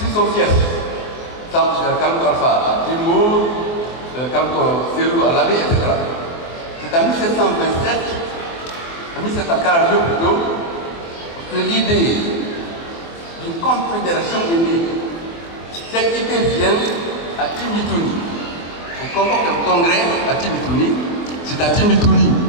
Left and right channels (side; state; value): right; late; 24 ms